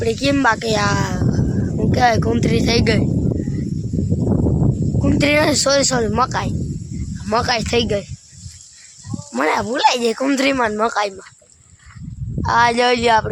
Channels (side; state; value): both; identical; correlation 1.00